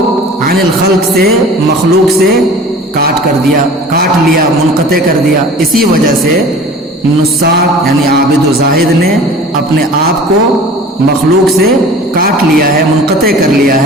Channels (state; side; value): normal; both; correlation 0.43